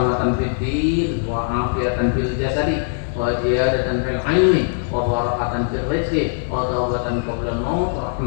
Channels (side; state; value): right; silent; 58 dB below the other